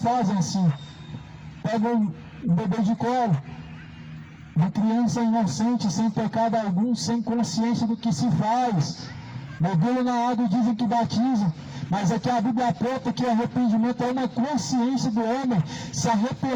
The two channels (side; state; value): both; identical; correlation 1.00